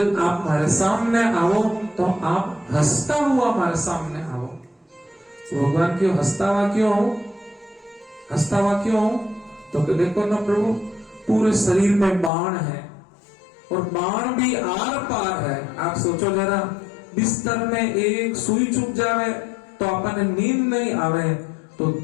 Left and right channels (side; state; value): right; drops out; at 12.3 s